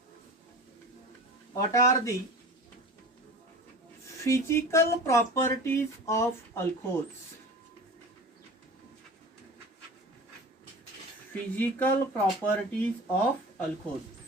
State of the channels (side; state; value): both; normal; correlation 0.36